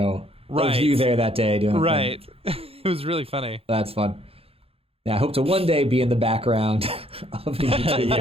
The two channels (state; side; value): late; left; 0.28 ms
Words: of you there that day doing that thing. It was really funny. That's fun. Yeah, I hope to one day be in the background of a